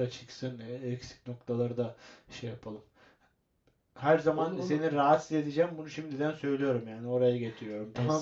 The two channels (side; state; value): both; identical; correlation 1.00